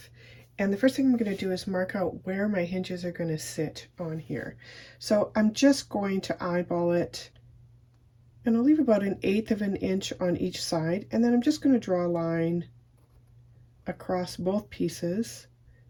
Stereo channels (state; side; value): identical; both; correlation 1.00